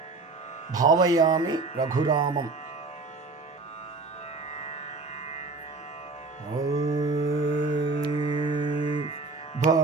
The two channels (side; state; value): left; quieter; 3.7 dB